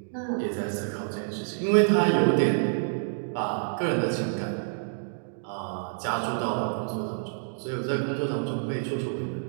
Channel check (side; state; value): left; silent; digital silence